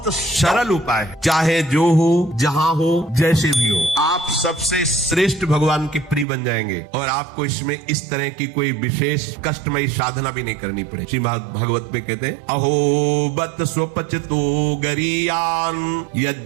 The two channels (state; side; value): drops out; left; at 6.2 s